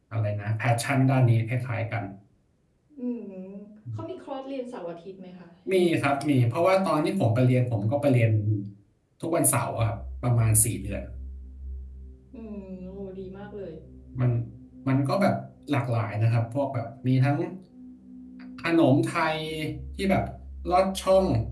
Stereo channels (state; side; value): identical; both; correlation 1.00